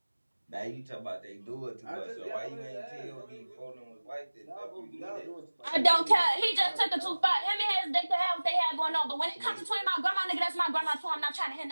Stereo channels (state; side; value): inverted; both; correlation -1.00